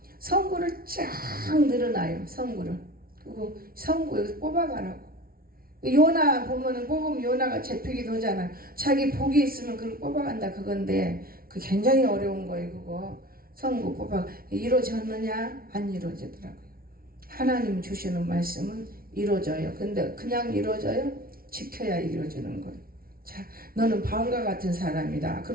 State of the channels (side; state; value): left; late; 0.43 ms